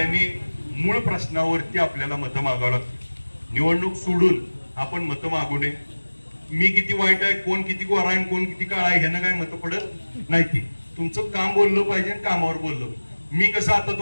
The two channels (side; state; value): both; inverted; correlation -1.00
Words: मूळ प्रश्नावरती आपल्याला मतं मागावं लागतं. निवडणूक सोडून आपण मतं मागू नये. मी किती वाईट आहे, कोण किती गोरा आहे, कोण किती काळा आहे ह्यानं काय मतं पडत नाही. ती तुमचं काम बोललं पाहिजे, कामावर बोललं. मी कसं आता